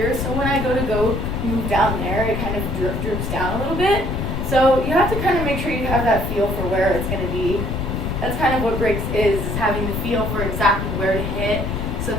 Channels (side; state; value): left; noise; rumble, 2 dB below the sound